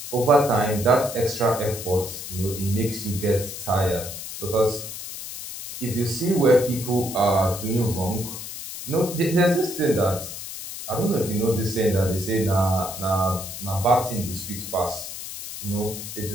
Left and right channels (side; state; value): left; noise; hiss, 9 dB below the sound